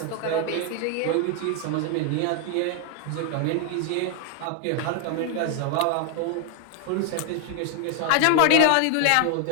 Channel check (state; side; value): different; both; correlation 0.00